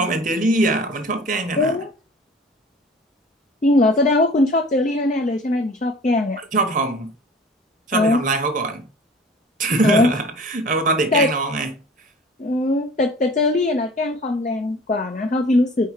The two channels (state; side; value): normal; both; correlation 0.45